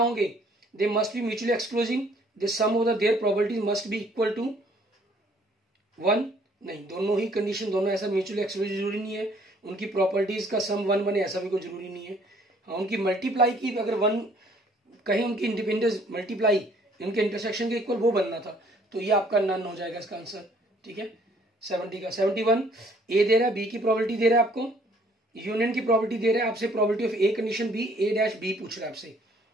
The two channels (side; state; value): both; normal; correlation 0.61